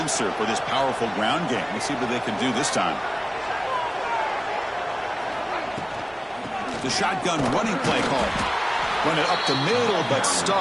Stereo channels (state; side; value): identical; both; correlation 1.00